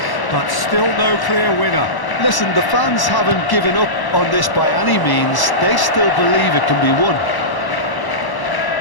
but still no clear winner. Listen, the fans haven't given up on this by any means. They still believe it can be won.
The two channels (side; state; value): right; late; 1.0 ms